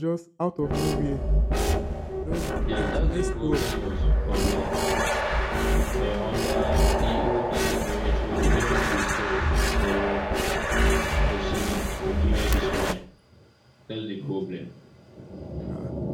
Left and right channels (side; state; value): both; identical; correlation 1.00